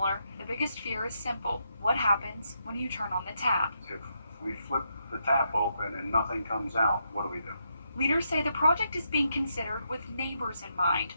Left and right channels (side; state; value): both; inverted; correlation -0.80